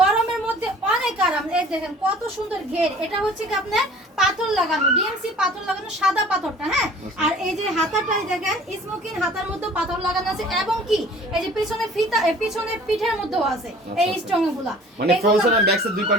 মধ্যে অনেক আরাম। এই দেখেন কত সুন্দর ঘের, এটা হচ্ছে কি আপনার পাথর লাগানো, ডিএমসি পাথর লাগানো, সাদা পাথরটা। হ্যাঁ, আর এই যে হাতাটাই দেখেন স্মোকিং হাতার মধ্যে পাথর লাগানো আছে, এবং কি এই যে পিছনে ফিতা, পিছনে পিঠের মধ্যেও আছে এই স্ট্রং গুলা, মানে ফ্রন্ট সাইড আর ব্যাক সাইড দুই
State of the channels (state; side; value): normal; both; correlation 0.48